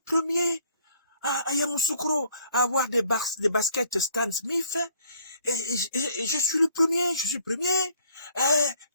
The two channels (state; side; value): inverted; both; correlation -0.61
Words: premier à Yamoussoukro à avoir des baskets Stan Smith. Et je suis le premier. Je suis le premier.